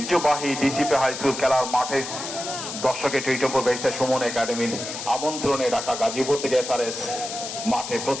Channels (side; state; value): left; noise; hiss, 7 dB below the sound